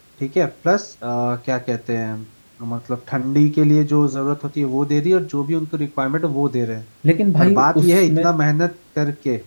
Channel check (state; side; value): inverted; both; correlation -1.00